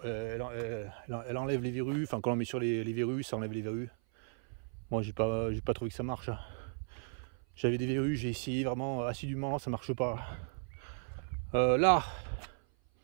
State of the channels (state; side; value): silent; left; 54 dB below the other